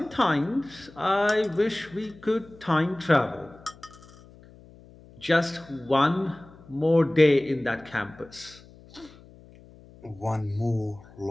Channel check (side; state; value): left; noise; hum, 23 dB below the sound